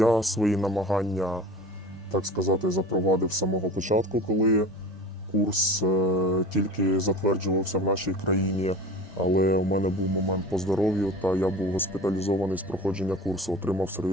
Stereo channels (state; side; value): normal; both; correlation 0.36